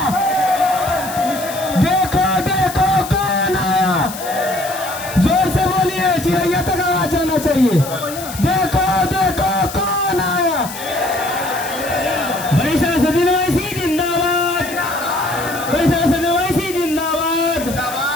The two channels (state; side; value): noise; left; hiss, 12 dB below the sound